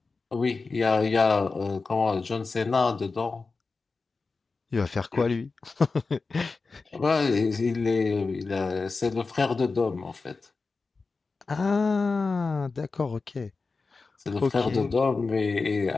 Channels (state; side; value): quieter; right; 4.2 dB